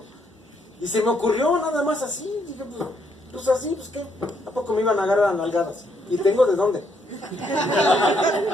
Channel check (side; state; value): both; normal; correlation 0.73